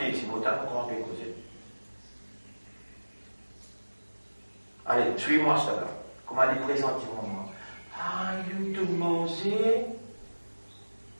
ici, comment on peut causer. Allez, suis-moi ça là. Comment aller présenter mon moment. Ah, il te manger.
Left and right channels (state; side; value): inverted; both; correlation -1.00